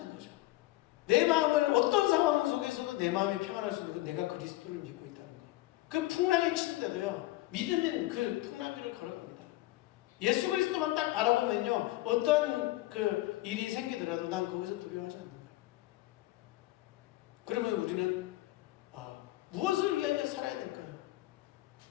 거죠. 내 마음을 어떤 상황 속에서도 내 마음이 평안할 수 있는 건 내가 그리스도를 믿고 있다는 거. 그 풍랑이 치는데도요, 믿음은 그 풍랑 위를 걸어갑니다. 예수 그리스도만 딱 바라보면요, 어떤 그 일이 생기더라도 난 거기서 두려워하지 않는 거예요. 그러면 우리는 무엇을 위하여 살아야 될까요?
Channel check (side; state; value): right; quieter; 17.6 dB